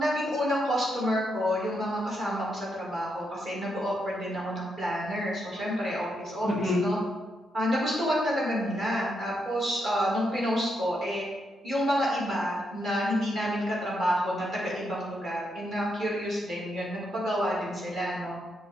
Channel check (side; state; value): both; normal; correlation 0.80